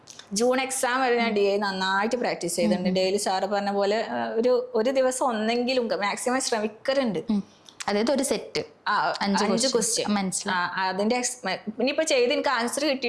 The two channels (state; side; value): identical; both; correlation 1.00